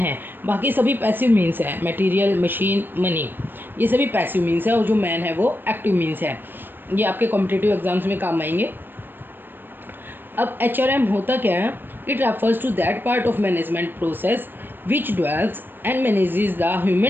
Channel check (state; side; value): late; left; 0.095 ms